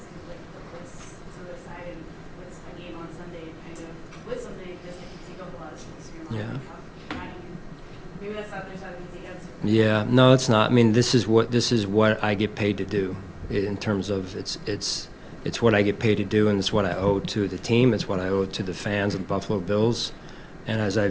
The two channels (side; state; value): both; identical; correlation 1.00